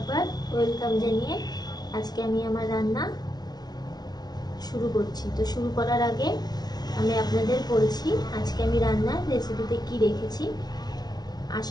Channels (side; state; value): right; late; 0.19 ms